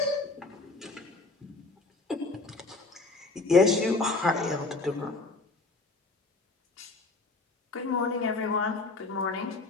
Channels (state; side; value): quieter; right; 3.4 dB